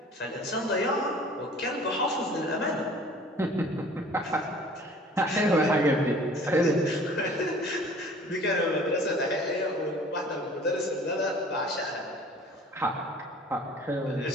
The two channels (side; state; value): both; normal; correlation 0.49